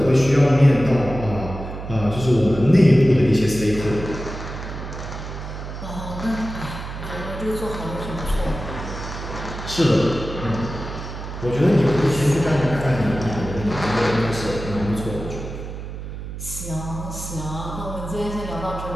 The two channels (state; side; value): noise; right; hum, 9 dB below the sound